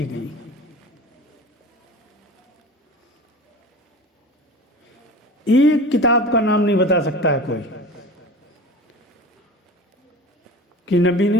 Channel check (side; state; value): both; normal; correlation 0.35